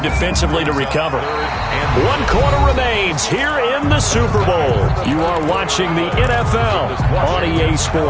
defensively to recover. 1 quarter remains here in the Super Bowl. You are watching the NFL on EA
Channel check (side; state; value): both; identical; correlation 1.00